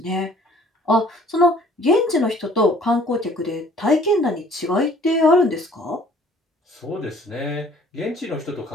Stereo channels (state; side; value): normal; both; correlation 0.55